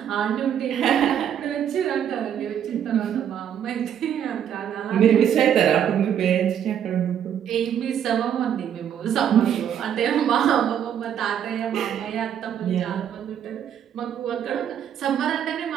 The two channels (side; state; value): left; quieter; 9.3 dB